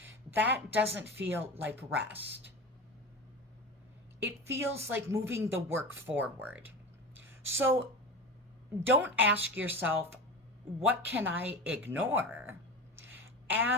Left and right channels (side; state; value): both; normal; correlation 0.28